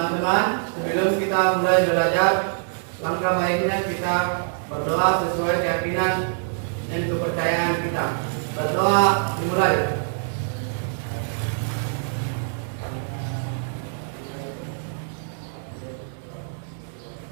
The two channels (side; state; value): left; silent; 62 dB below the other